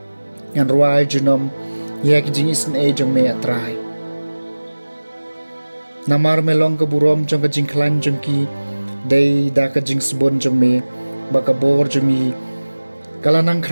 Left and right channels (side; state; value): both; inverted; correlation -1.00